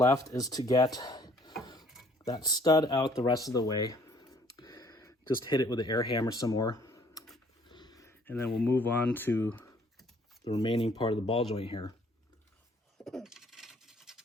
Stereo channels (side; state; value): both; normal; correlation 0.60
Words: is to get that stud out the rest of the way. Just hit it with the air hammer some more. And then we'll move on to the remaining part of the ball joint here.